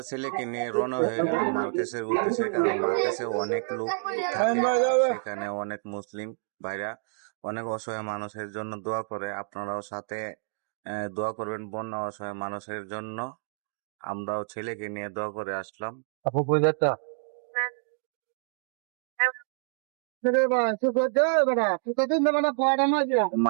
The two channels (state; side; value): silent; left; digital silence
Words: ছেলেকে নিয়ে রওনা হয়ে গেলাম মার্কেসের উদ্দেশ্যে। কারণ মার্কেসে অনেক লোক থাকে আর সেখানে অনেক মুসলিম ভাইরা অনেক অসহায় মানুষের জন্য দোয়া করে। আপনারাও সাথে দোয়া করবেন বন্যা অসহায় মানুষের জন্য। আমরাও ছেলেকে নিয়ে দোয়া করে আসলাম। আপু কই যাচ্ছা?